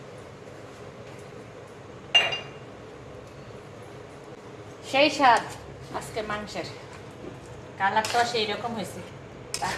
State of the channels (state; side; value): identical; both; correlation 1.00